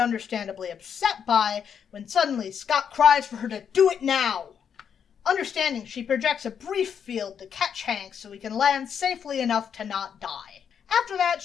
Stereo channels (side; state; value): right; quieter; 7.7 dB